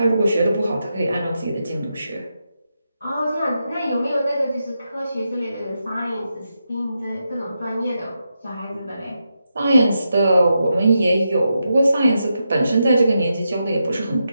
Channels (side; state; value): both; inverted; correlation -0.86